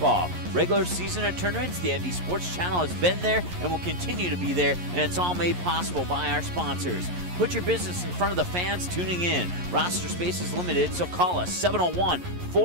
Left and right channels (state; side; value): late; left; 11 ms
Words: Regular season and tournaments, the ND Sports Channel has been there and will continue to be there, and it's all made possible by our sponsors. Put your business in front of the fans tuning in. Roster space is limited, so call us